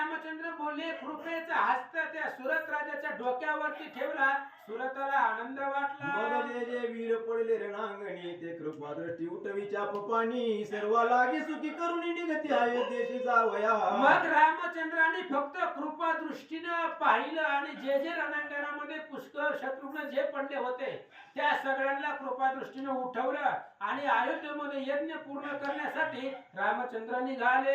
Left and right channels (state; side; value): identical; both; correlation 1.00